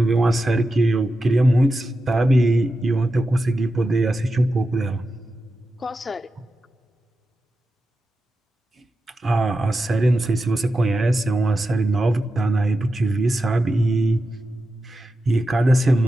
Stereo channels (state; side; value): normal; both; correlation 0.90